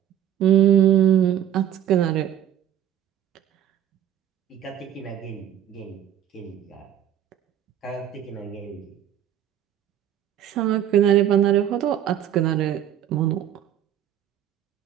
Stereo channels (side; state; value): left; quieter; 10.7 dB